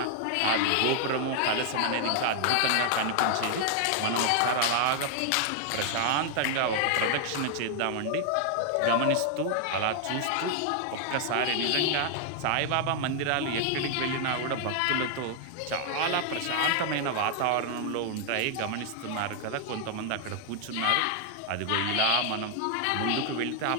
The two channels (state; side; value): different; both; correlation 0.00